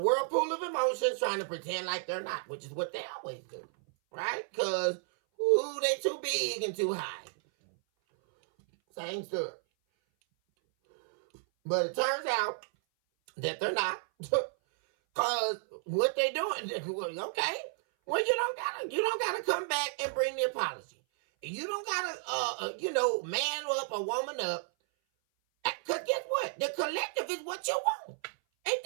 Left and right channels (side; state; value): left; silent; 56 dB below the other